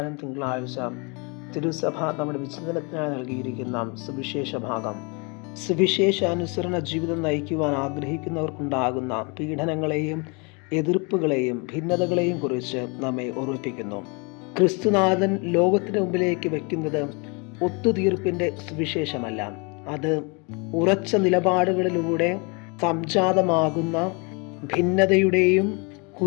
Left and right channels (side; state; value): right; quieter; 31.7 dB